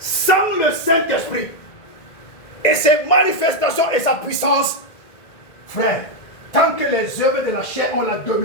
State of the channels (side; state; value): right; late; 2.0 ms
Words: le Saint-Esprit et ses manifestations et sa puissance, frère, tant que les œuvres de la chair ont la